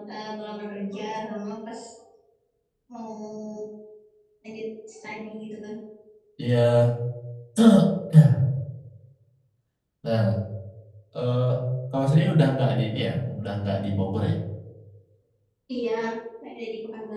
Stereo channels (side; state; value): both; identical; correlation 1.00